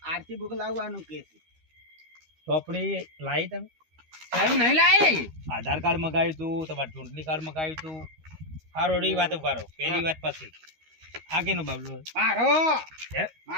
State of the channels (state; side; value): late; left; 13 ms